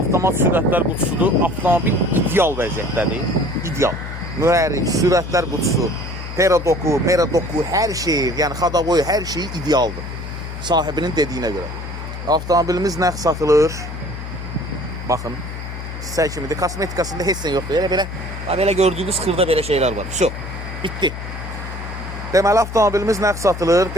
sürətlər qutusudur. Avtomobil ideal vəziyyətdədir. İdeal. Mühərrik, sürətlər qutusu, peradoku, meradoku, hər şeyi, yəni xadaboyu, hər şeyi idealdır. Sahibinin dediyinə görə. Avtomobilimiz nəqd satılır. Baxın, sizə kimidir. Kosmetikasında heç nə yoxdur. Belə gördüyünüz xırda belə şeylər var. Şu, bitdi. Deməli, avtomobilimiz nəqd satılır,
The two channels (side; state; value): left; noise; hum, 8 dB below the sound